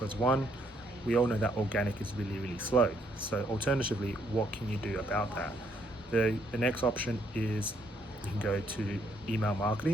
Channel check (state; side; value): normal; both; correlation 0.70